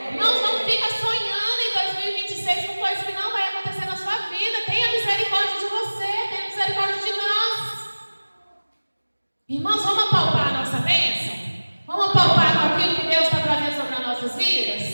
Irmãos, não fica sonhando em 2026 com coisa que não vai acontecer na sua vida. Tenha misericórdia de você, tenha misericórdia de nós. Irmãos, vamos apalpar a nossa bênção? Vamos apalpar com aquilo que Deus está trazendo sobre as nossas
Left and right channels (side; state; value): both; inverted; correlation -1.00